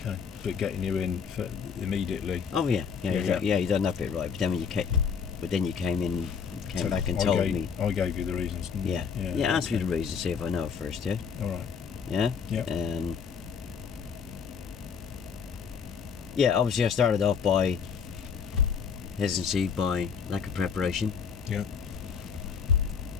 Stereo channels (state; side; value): quieter; right; 6.5 dB